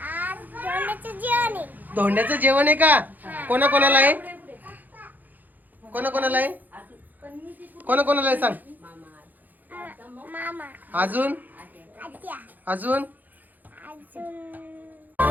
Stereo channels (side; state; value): left; late; 0.084 ms